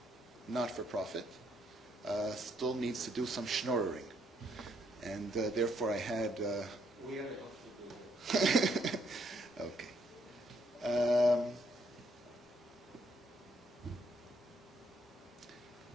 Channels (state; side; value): normal; both; correlation 0.71